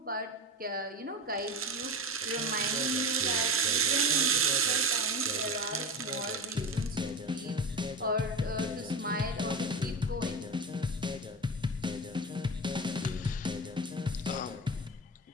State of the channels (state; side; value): normal; both; correlation 0.25